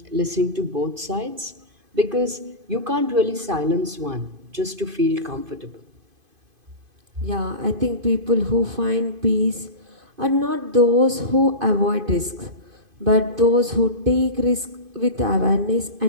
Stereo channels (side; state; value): left; late; 2.5 ms